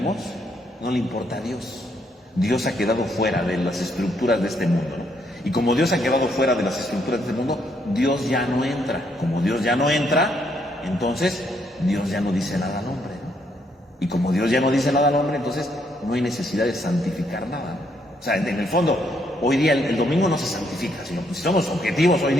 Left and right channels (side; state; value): both; normal; correlation 0.73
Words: no le importa a Dios. Dios ha quedado fuera de las estructuras de este mundo, ¿no? Y como Dios ha quedado fuera de las estructuras de este mundo, Dios ya no entra. Como Dios ya no entra, entonces Dios ya no dice nada al hombre, ¿no? Y como Dios ya no dice nada al hombre, entonces no hay necesidad de santificar nada, ¿no? O sea, en el fondo, hoy día el domingo no se santifica, sino si somos objetivos hoy